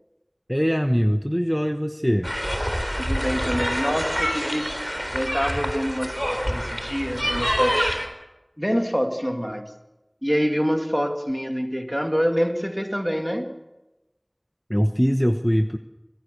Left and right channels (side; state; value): both; identical; correlation 1.00